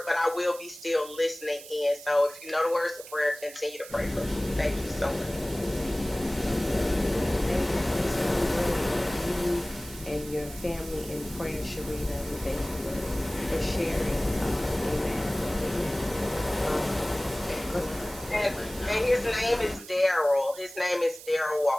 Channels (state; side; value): noise; right; hiss, 15 dB below the sound